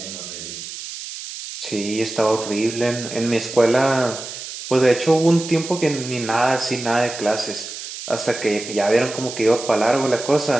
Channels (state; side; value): noise; right; hiss, 10 dB below the sound